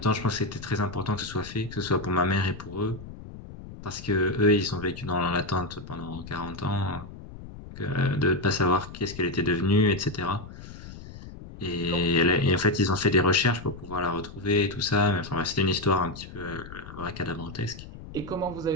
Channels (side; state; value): left; noise; rumble, 14 dB below the sound